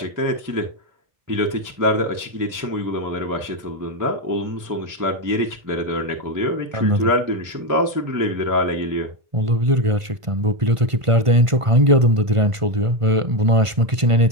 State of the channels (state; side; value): late; left; 1.5 ms